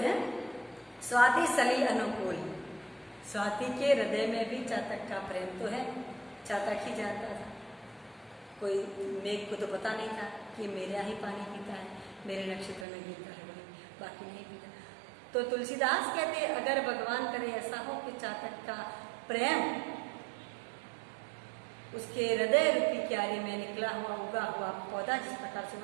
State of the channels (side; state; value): left; drops out; at 12.9 s